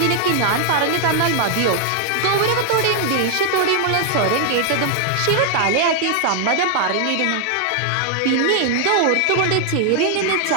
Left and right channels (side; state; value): both; different; correlation 0.00